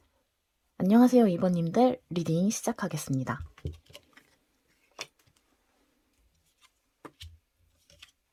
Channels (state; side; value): identical; both; correlation 1.00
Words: 안녕하세요, 2번님들 리딩 시작하겠습니다.